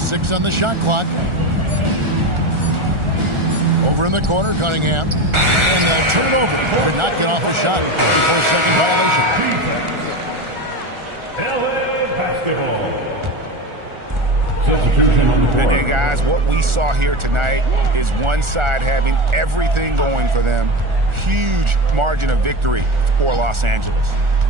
on the shot clock. Over in the corner, Cunningham. And they'll turn it over. Could not get off the shot before second violation. LA basketball. Substitution on the court. And guys, what we saw here tonight is one side having everything going for them. Huge margin of victory for Los Angeles.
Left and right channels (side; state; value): left; late; 1.4 ms